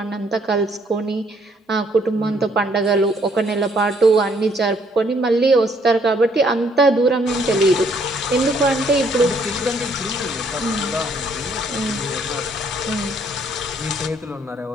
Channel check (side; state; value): both; normal; correlation 0.66